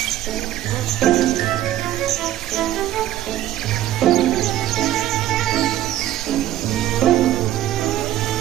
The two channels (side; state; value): left; quieter; 13.2 dB